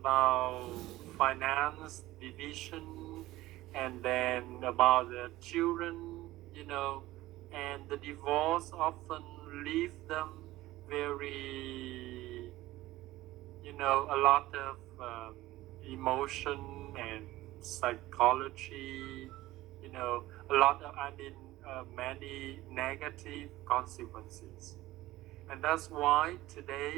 finance division and then about the children, you know, and the divorce often leave them very, you know, a lot of emotion and psychology, you know, a lot of, many negative consequences. And that's why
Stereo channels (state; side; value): quieter; left; 17.0 dB